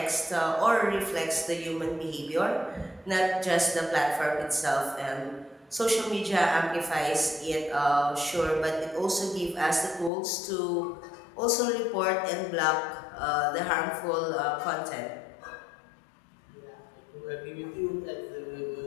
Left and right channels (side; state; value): right; drops out; at 10.1 s